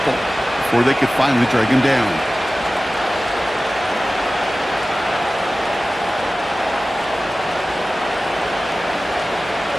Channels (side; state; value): both; normal; correlation 0.96